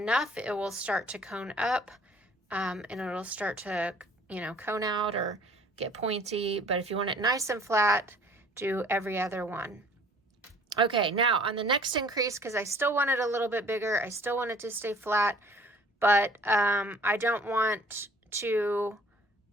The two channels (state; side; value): normal; both; correlation 0.54